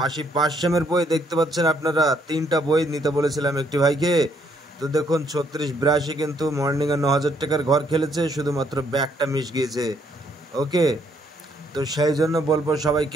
80, 500-এর বই দেখতে পাচ্ছেন আপনারা। 3টা বই নিতে বলেছিলাম একটি ভাইকে। তো দেখুন 36, 82 কিন্তু মর্নিংয়ে 9000 টাকার ঘর খেলেছে, শুধুমাত্র ব্যাকটা মিস গিয়েছে। ওকে, তো সেই জন্য বলবো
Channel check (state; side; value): normal; both; correlation 0.70